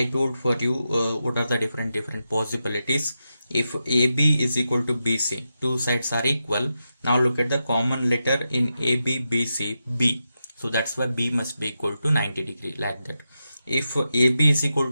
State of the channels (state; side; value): inverted; both; correlation -0.88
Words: told for you what are the different possibilities. If AB is equal to BC, two sides are equal. Now look at the common letter in AB, BC, B. So that's why B must be equal to 90 degree, like that. If AB is equal